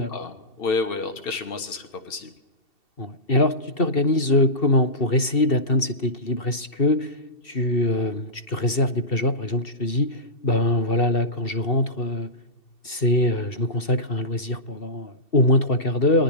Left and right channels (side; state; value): right; late; 2.7 ms